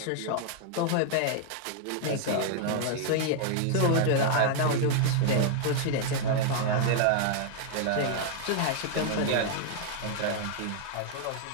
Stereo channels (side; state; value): both; different; correlation -0.01